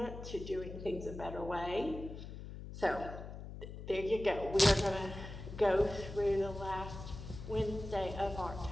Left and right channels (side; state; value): left; noise; hum, 10 dB below the sound